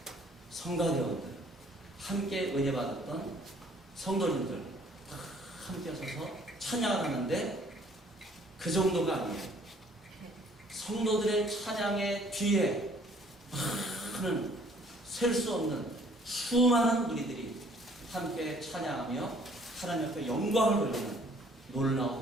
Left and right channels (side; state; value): both; normal; correlation 0.59